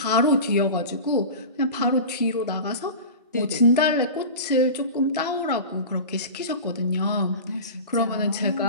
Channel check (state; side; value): inverted; both; correlation -0.31